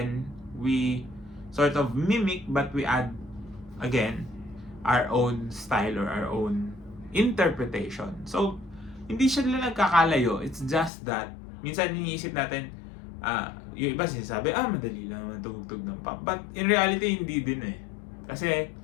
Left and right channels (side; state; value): right; drops out; at 10.9 s